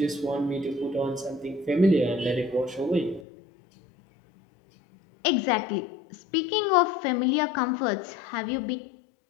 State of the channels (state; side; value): drops out; right; at 3.2 s